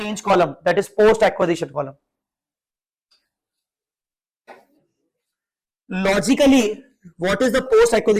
column, that is post acquisition column. Logically, what is the post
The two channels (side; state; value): both; identical; correlation 1.00